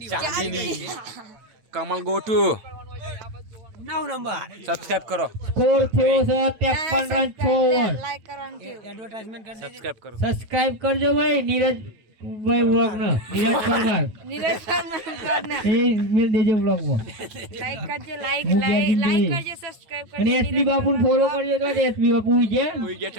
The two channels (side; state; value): left; late; 9.2 ms